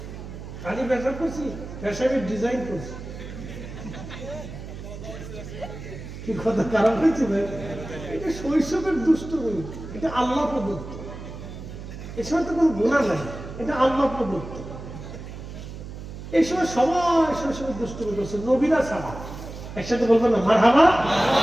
খালি পেশাব করছি, পেশাবের ডিজাইন করছি। কি কথা খারাপ হয়েছে ভাই? এটা শৈশবের দুষ্টুমি, এটা আল্লাহ প্রদত্ত। এ সময় তো কোনো গুনাহ নাই, এটা আল্লাহ প্রদত্ত। এই সময় সবাই শৈশবের দুষ্টুমি করছে, নবীরা ছাড়া। একসাথে বলবেন না মারহাবা?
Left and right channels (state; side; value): noise; right; hum, 11 dB below the sound